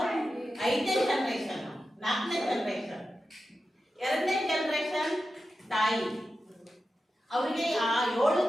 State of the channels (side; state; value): both; normal; correlation 0.91